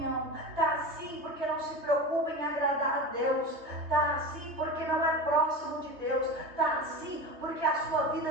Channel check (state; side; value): late; left; 3.2 ms